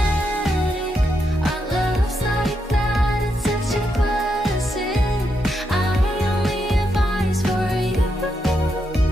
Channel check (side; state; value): both; normal; correlation 0.82